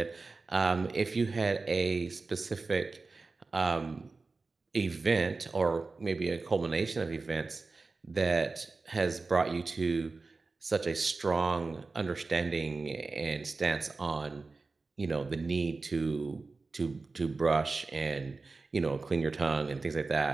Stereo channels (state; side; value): quieter; left; 3.9 dB